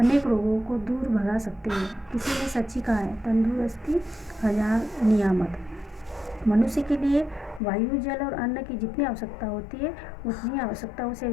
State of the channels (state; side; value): drops out; right; at 7.6 s